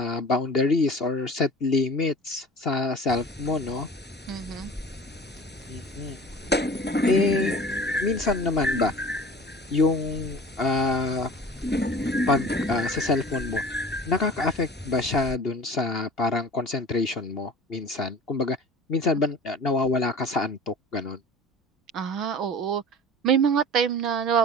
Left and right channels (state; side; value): normal; both; correlation 0.40